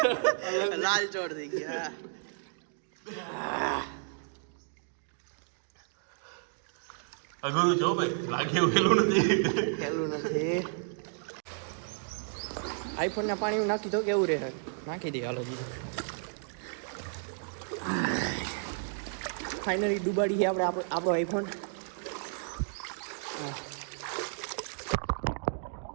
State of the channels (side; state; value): left; silent; digital silence